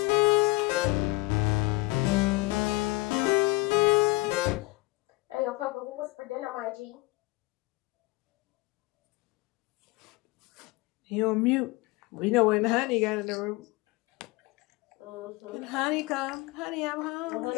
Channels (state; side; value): quieter; right; 22.2 dB